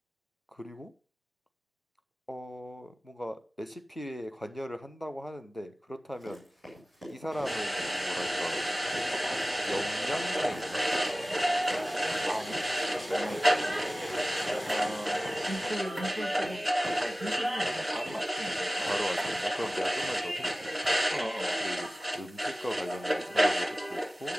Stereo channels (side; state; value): both; normal; correlation 0.97